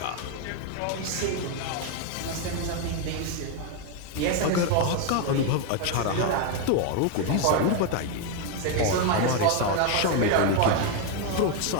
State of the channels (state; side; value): different; both; correlation 0.01